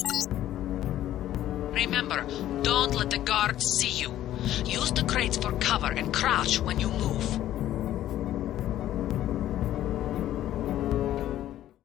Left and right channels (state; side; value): quieter; right; 12.9 dB